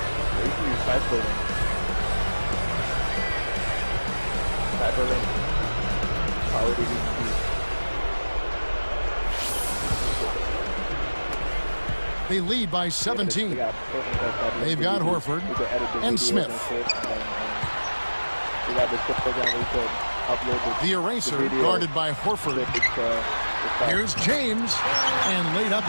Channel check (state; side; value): inverted; both; correlation -1.00